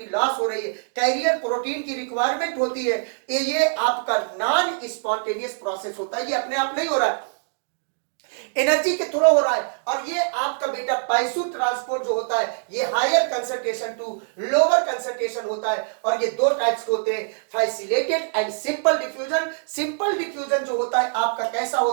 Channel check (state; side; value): silent; left; digital silence